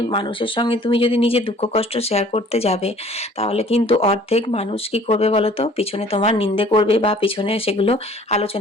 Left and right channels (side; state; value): both; normal; correlation 0.53